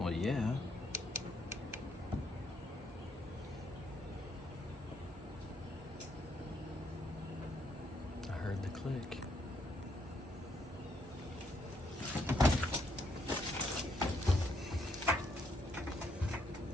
yeah. I heard the click.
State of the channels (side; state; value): both; normal; correlation 0.74